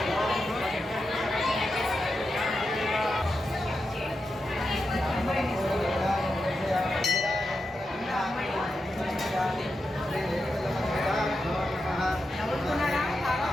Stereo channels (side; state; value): both; normal; correlation 0.88